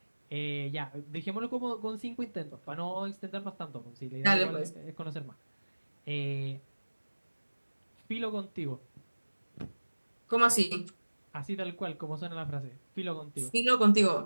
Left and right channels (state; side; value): inverted; both; correlation -1.00